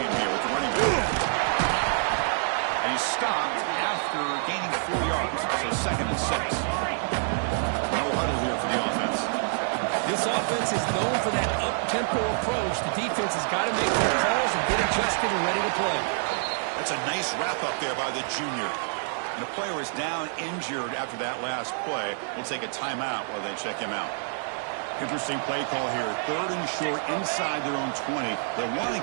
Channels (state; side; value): silent; left; digital silence